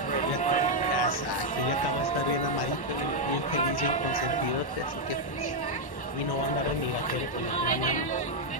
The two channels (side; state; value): right; late; 1.1 ms